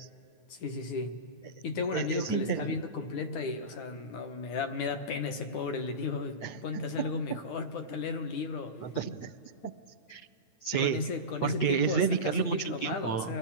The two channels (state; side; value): late; right; 9.2 ms